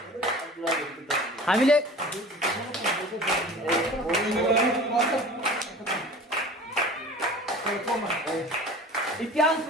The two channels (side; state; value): both; normal; correlation 0.41